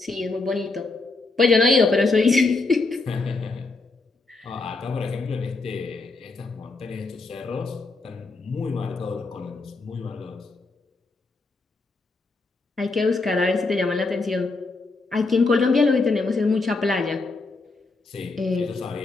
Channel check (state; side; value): quieter; right; 3.6 dB